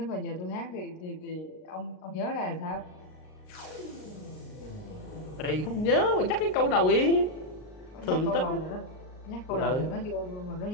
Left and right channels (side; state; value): right; late; 38 ms